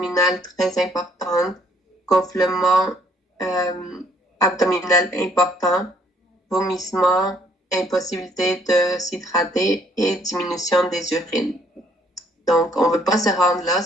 très importante, gonflement abdominal important, vomissement, impossibilité de s'hydrater et diminution des urines. Donc, on ne veut pas se rendre là,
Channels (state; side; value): normal; both; correlation 0.64